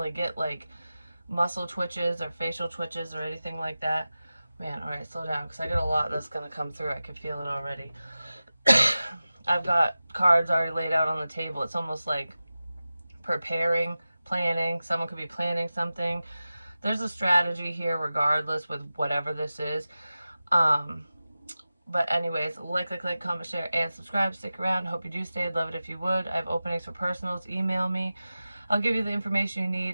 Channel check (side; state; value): both; inverted; correlation -0.95